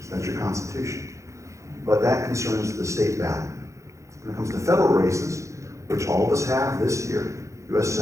That's your Constitution. But that concerns the state ballot. When it comes to federal races, which all of us have this year, U.S.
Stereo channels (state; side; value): late; left; 0.15 ms